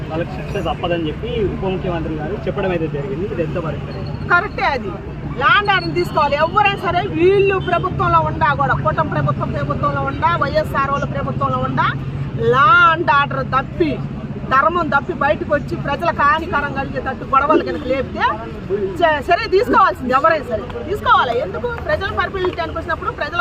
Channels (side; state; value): both; identical; correlation 1.00